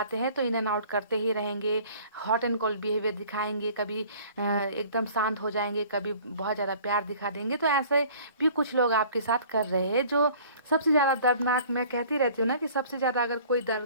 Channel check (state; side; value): inverted; both; correlation -0.51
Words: हैं, तो इन एंड आउट करते ही रहेंगे, हॉट एंड कोल्ड बिहेवियर दिखाएंगे, कभी एकदम शांत हो जाएंगे, कभी बहुत ज़्यादा प्यार दिखा देंगे। तो ऐसे भी कुछ लोग आपके साथ कर रहे हैं। जो सबसे ज़्यादा दर्दनाक, मैं कहती रहती हूँ ना कि सबसे ज़्यादा अगर कोई